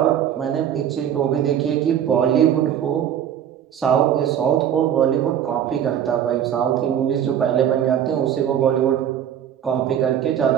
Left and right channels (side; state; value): left; quieter; 9.7 dB